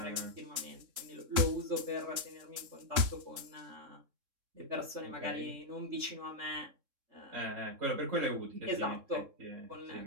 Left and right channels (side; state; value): left; late; 3.7 ms